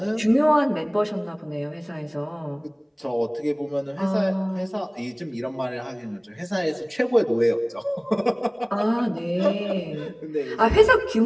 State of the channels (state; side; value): identical; both; correlation 1.00